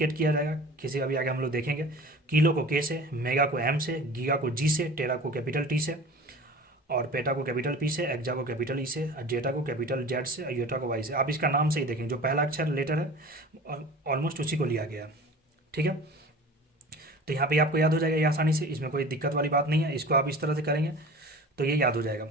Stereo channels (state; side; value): normal; both; correlation 0.40